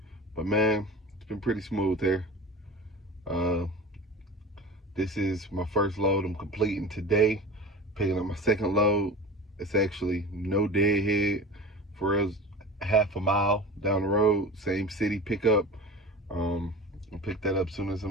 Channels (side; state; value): both; normal; correlation 0.34